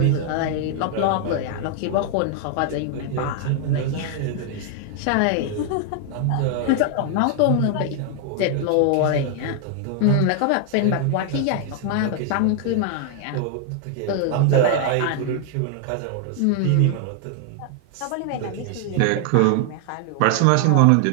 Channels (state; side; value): different; both; correlation 0.00